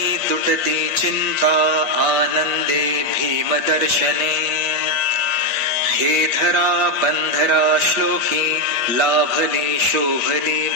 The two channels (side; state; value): left; late; 8.3 ms